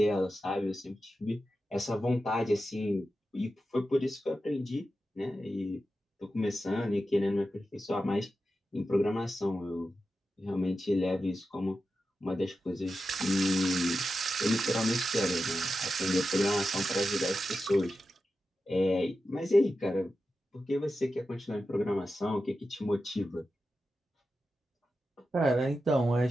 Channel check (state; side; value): normal; both; correlation 0.91